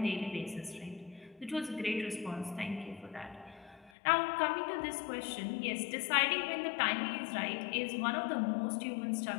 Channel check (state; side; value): drops out; right; at 3.9 s